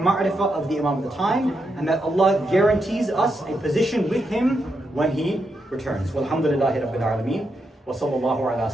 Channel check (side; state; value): both; normal; correlation 0.83